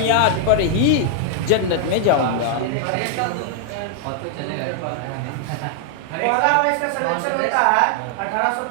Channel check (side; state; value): both; different; correlation 0.00